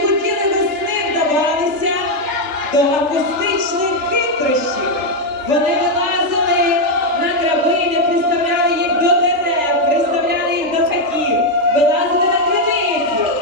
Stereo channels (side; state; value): left; late; 3.4 ms